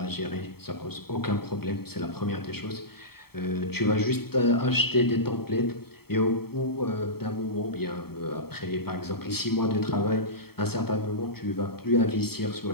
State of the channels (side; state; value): right; late; 0.95 ms